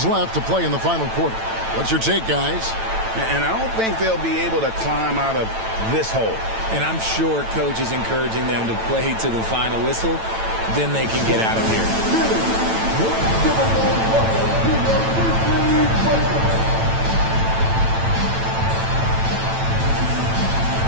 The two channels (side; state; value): left; late; 9.0 ms